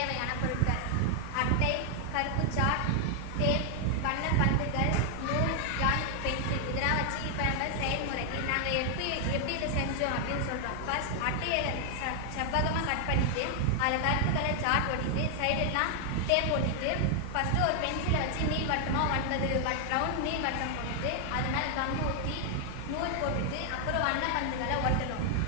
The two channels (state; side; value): different; both; correlation 0.00